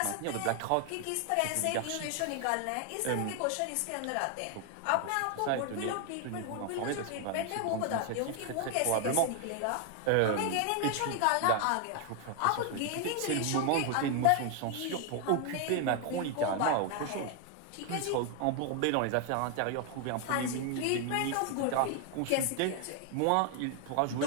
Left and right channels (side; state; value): both; different; correlation 0.00